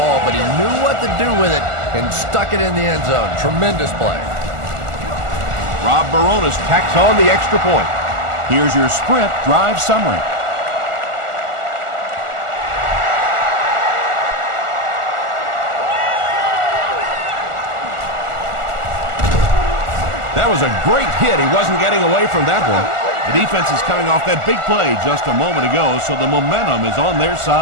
but he knew what to do with it and stuck it in the end zone. Tremendous play. Rob Baronis tacks on the extra point. Here's your sprint drive summary. That was a great hit. He wasn't getting away from that one. The defense is coming off that big play just a moment ago, so the momentum is on their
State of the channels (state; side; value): late; left; 1.4 ms